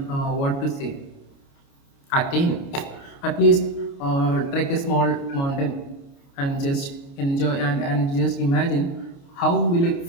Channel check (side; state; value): right; late; 29 ms